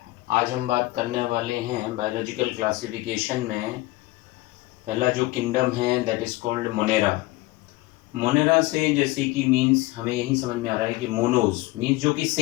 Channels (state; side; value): quieter; right; 19.8 dB